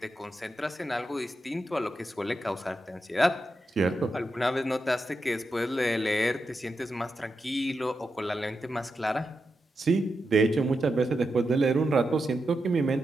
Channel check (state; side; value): normal; both; correlation 0.87